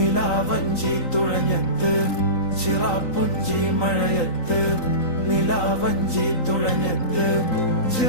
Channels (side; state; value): right; late; 3.9 ms